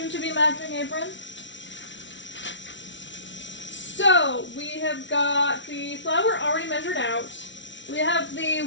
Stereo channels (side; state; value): right; late; 0.54 ms